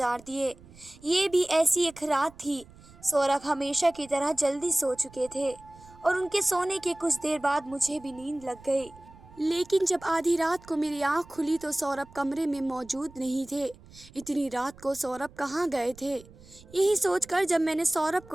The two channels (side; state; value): right; noise; rumble, 22 dB below the sound